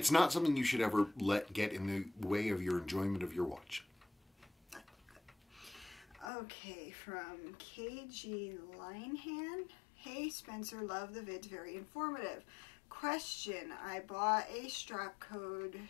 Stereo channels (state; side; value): drops out; right; at 6.3 s